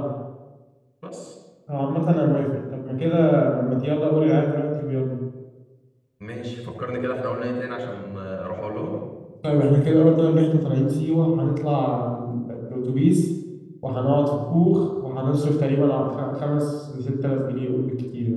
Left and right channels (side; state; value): both; identical; correlation 1.00